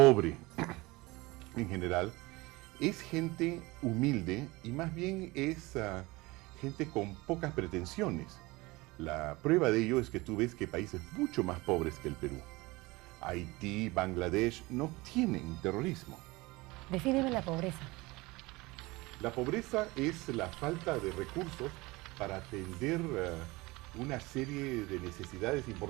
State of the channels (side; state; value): left; quieter; 22.3 dB